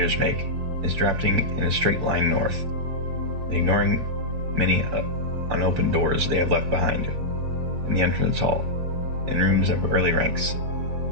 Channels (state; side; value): late; left; 7.2 ms